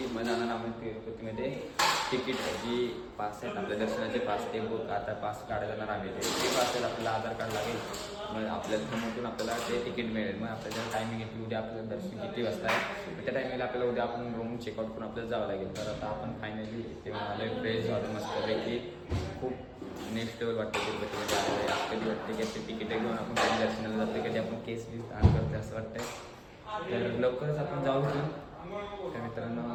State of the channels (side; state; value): both; identical; correlation 1.00